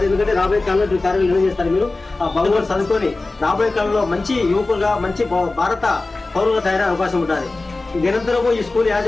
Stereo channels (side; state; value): right; quieter; 3.3 dB